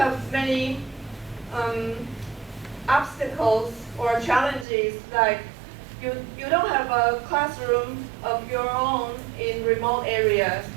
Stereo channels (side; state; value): left; drops out; at 4.7 s